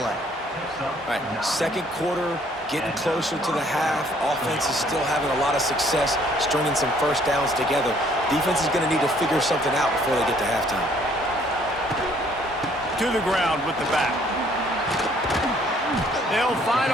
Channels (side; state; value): both; normal; correlation 0.62